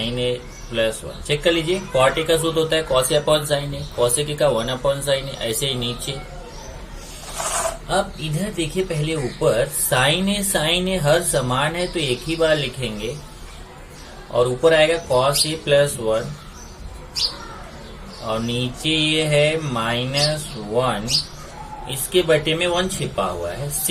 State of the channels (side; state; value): both; identical; correlation 1.00